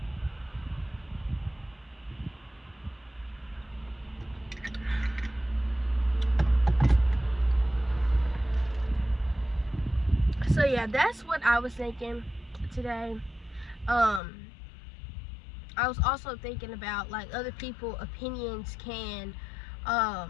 So yeah, that's what I was thinking today. I was also thinking about, like, other people opinions can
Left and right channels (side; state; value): right; drops out; at 14.2 s